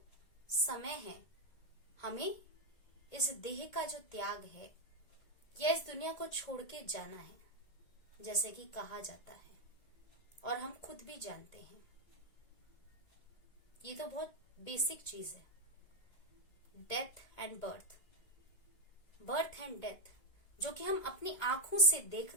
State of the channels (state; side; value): late; right; 2.2 ms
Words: समय है, हमें इस देह का जो त्याग है या इस दुनिया को छोड़ के जाना है, जैसे कि कहा जाता है और हम खुद भी जानते हैं। ये तो बहुत बेसिक चीज है, death and birth, birth and death, जो कि हम अपनी आंखों से